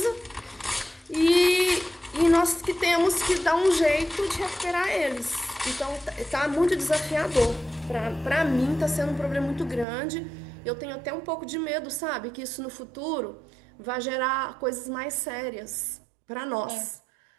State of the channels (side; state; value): left; drops out; at 9.9 s